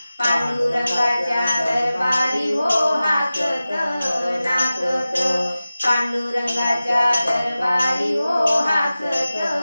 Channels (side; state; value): both; inverted; correlation -0.96